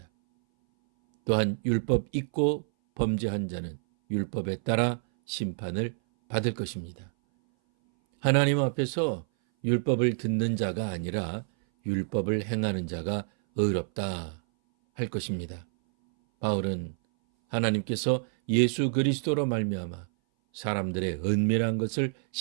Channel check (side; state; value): left; silent; 58 dB below the other